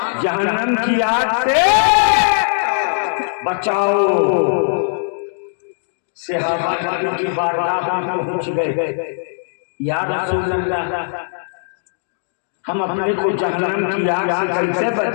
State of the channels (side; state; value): right; silent; digital silence